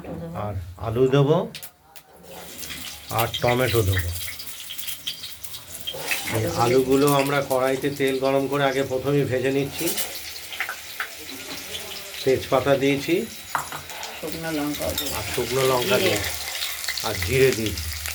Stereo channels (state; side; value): identical; both; correlation 1.00